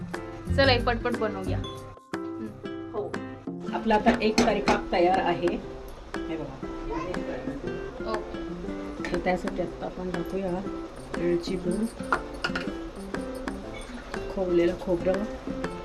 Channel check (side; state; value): both; identical; correlation 1.00